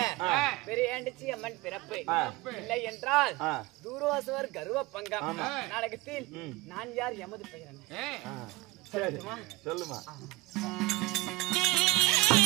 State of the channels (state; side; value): quieter; left; 20.8 dB